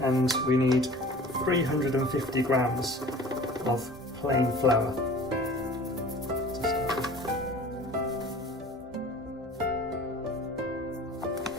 And we need 350 grams of plain flour to start with.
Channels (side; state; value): both; normal; correlation 0.43